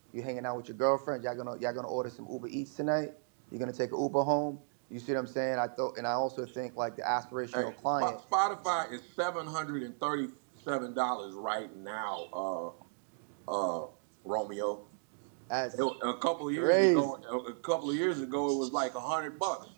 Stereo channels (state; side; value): silent; left; digital silence